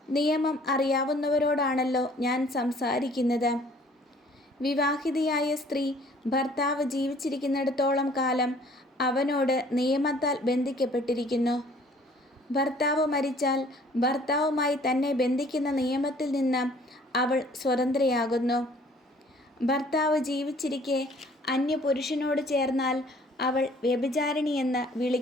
നിയമം അറിയാവുന്നവരോടാണല്ലോ ഞാൻ സംസാരിക്കുന്നത്. വിവാഹിതയായ സ്ത്രീ ഭർത്താവ് ജീവിച്ചിരിക്കുന്നിടത്തോളം കാലം അവനോട് നിയമത്താൽ ബന്ധിക്കപ്പെട്ടിരിക്കുന്നു. ഭർത്താവ് മരിച്ചാൽ ഭർത്താവുമായി തന്നെ ബന്ധിക്കുന്ന നിയമത്തിൽ നിന്ന് അവൾ സ്വതന്ത്രയാകുന്നു. ഭർത്താവ് ജീവിച്ചിരിക്കെ അന്യപുരുഷനോട് ചേർന്നാൽ അവൾ വ്യഭിചാരിണിയെന്ന്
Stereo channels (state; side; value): normal; both; correlation 0.56